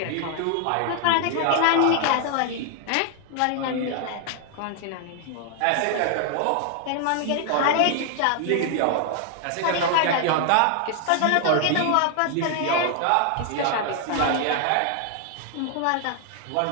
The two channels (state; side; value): different; both; correlation 0.00